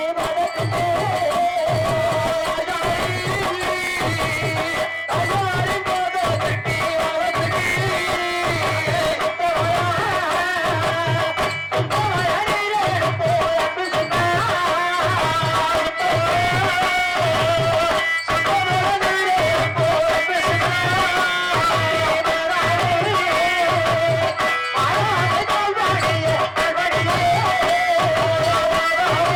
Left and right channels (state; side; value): identical; both; correlation 1.00